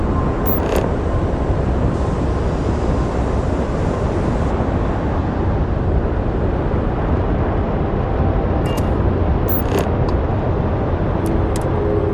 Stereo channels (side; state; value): both; identical; correlation 1.00